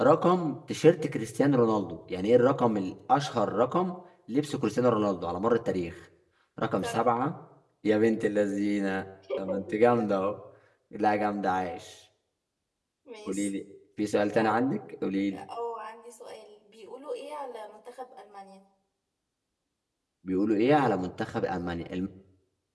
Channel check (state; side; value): identical; both; correlation 1.00